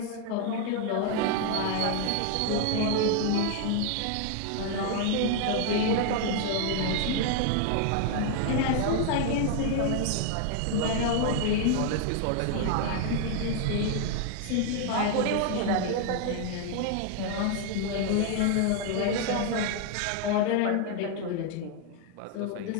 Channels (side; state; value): both; different; correlation 0.00